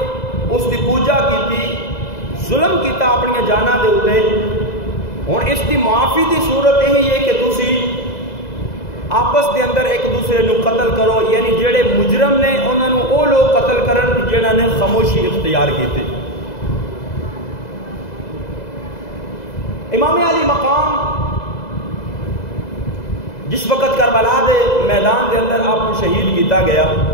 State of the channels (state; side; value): late; right; 2.0 ms